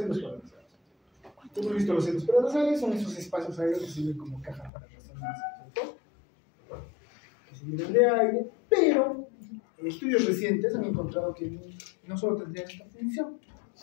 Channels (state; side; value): drops out; right; at 4.7 s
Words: paranasales. Hemos visto los senos paranasales, son esos espacios aéreos que sirven como caja para resonancia, ¿cierto? Que se llenan de aire, pero en estudios recientes han encontrado que no solo tendrían esta función,